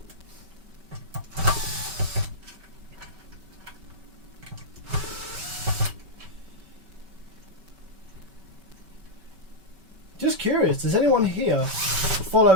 Just curious, does anyone here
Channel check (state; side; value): late; left; 5.2 ms